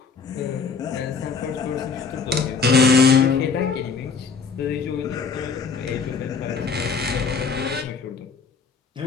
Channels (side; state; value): right; quieter; 5.2 dB